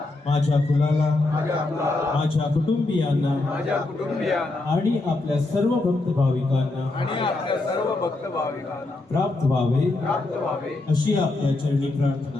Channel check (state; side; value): quieter; right; 3.0 dB